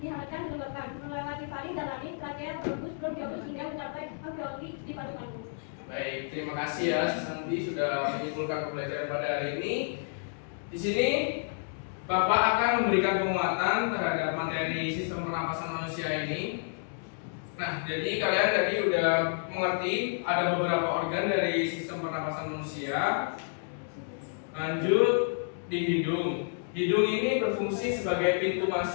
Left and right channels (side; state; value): right; silent; digital silence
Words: dihangatkan, dilembabkan, melewati faring dan laring, trabea, bronkus, bronkiolus hingga mencapai alveoli di paru-paru. Baik, terima kasih ya Santi sudah menyimpulkan pembelajaran pada hari ini. Di sini Bapak akan memberikan penguatan terhadap materi sistem pernapasan manusia ini. Nah, jadi kalian tadi udah mengerti ada beberapa organ dari sistem pernapasan manusia. Lanjut di hidung. Hidung ini berfungsi sebagai pintu